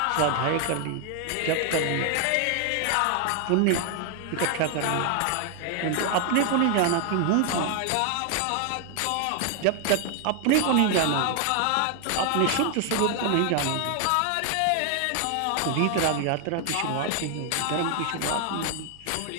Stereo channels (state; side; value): different; both; correlation 0.00